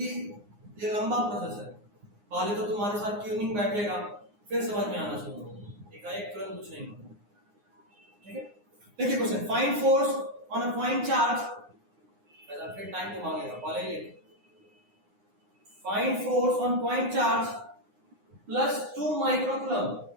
ये लंबा प्रोसेस है। पहले तो तुम्हारे साथ ट्यूनिंग बैठेगा, फिर समझ में आना शुरू होगा, एकाएक तुरंत कुछ नहीं होगा, ठीक है। देखिए question, find force on a point charge, ऐसा फिर टाइम को मांगेगा, पहले ही find force on point charge plus 2 microcoulomb,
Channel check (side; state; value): left; late; 9.7 ms